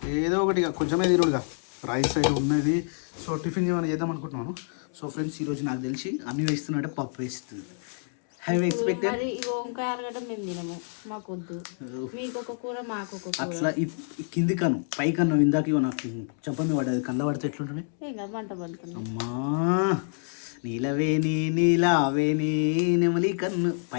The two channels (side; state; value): right; silent; 60 dB below the other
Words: ఏదో ఒకటి కొంచెమే తిరుగుడుగా రైస్ అయితే ఉన్నది. సో టిఫిన్ ఏమైనా చేద్దాం అనుకుంటున్నాను. సో ఫ్రెండ్స్ ఈరోజు నాకు తెలిసి అన్ని వేస్తున్నట్టే పప్పు వేస్తుంది. హ్యావ్ ఎక్స్పెక్టెడ్ అట్లా కింది కను పై కన్ను ఇందాక నాకు చెప్పండి పడ్డది. కంద పడితే ఎట్లుంటుంది? అమ్మా నీలావేని నెమలి కన్ను